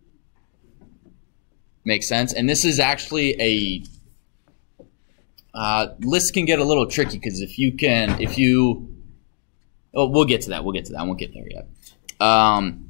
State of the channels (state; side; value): silent; right; digital silence